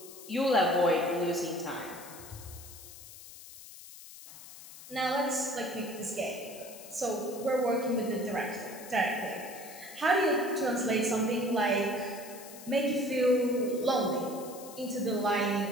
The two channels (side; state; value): left; noise; hiss, 16 dB below the sound